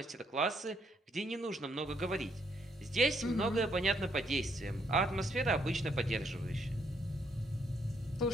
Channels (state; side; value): normal; both; correlation 0.73